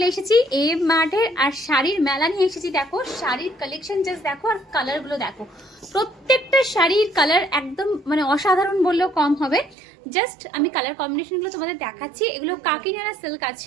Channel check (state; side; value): drops out; left; at 9.8 s